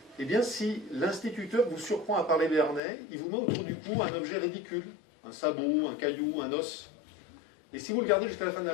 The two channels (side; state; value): right; drops out; at 2.8 s